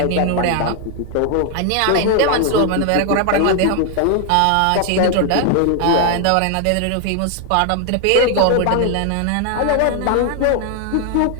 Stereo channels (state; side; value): different; both; correlation 0.01